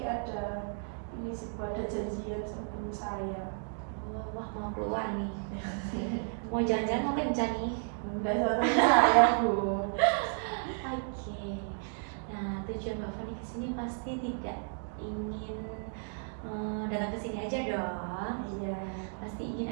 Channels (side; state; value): left; silent; 56 dB below the other